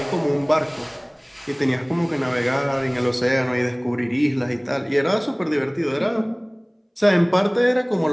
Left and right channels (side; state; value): both; identical; correlation 1.00